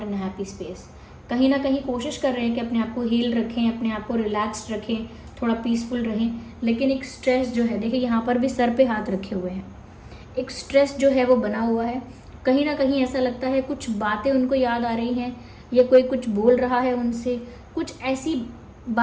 in happy space. कहीं ना कहीं कोशिश कर रहे हैं कि अपने आप को हील रखें, अपने आप को रिलैक्स्ड रखें, थोड़ा पीसफुल रहें, लेकिन एक स्ट्रेस जो है, देखिए यहाँ पर भी सर पे हाथ रखे हुए हैं, एक स्ट्रेस जो है वो बना हुआ है। कहीं ना कहीं ऐसा लगता है कुछ बातें उनको याद आ रही हैं, या कोई कुछ बोल रहा है उनसे, कुछ ऐसी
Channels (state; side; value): identical; both; correlation 1.00